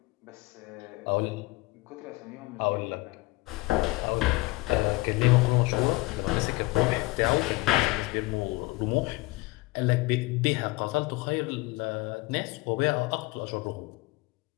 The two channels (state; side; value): quieter; right; 22.2 dB